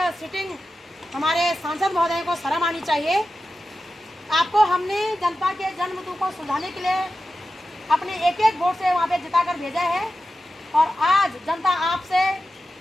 सिटिंग हमारे सांसद महोदय को शर्म आनी चाहिए। आपको हमने जनता के जन्मतु को सुलझाने के लिए अपने एक एक वोट से वहाँ पे जिताकर भेजा है, और आज जनता आपसे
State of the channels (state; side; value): normal; both; correlation 0.92